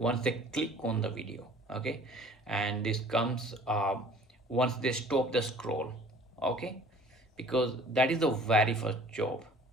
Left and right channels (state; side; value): normal; both; correlation 0.50